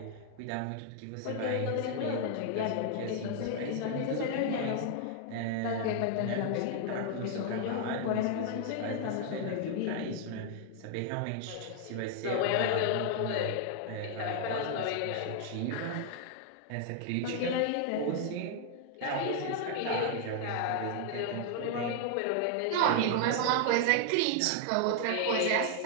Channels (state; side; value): different; both; correlation 0.00